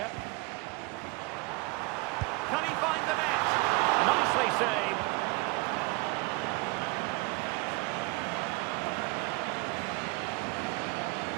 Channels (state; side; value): quieter; left; 25.4 dB